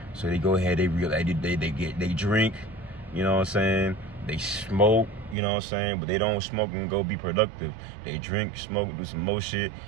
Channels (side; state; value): left; drops out; at 5.4 s